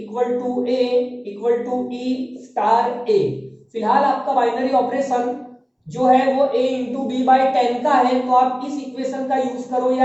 to e star a। फिलहाल आपका बाइनरी ऑपरेशन जो है वो a इंटू बी बाई 10 का है, तो आप इस इक्वेशन का यूज करो या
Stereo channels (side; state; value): both; identical; correlation 1.00